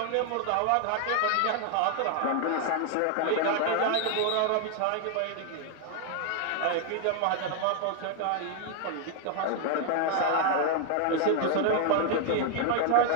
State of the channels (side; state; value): both; different; correlation 0.00